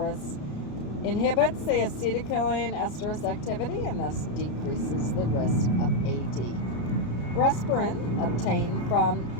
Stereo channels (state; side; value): late; right; 33 ms